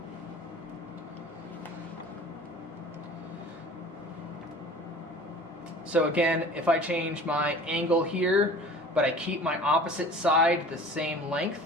So again, if I change my angle here, but I keep my opposite side the same length,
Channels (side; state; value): both; normal; correlation 0.43